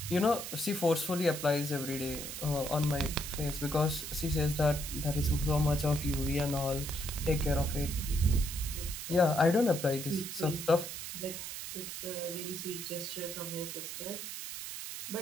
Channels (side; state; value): right; noise; hiss, 7 dB below the sound